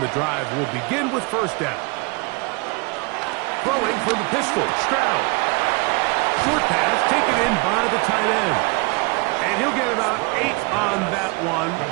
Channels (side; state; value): left; quieter; 28.5 dB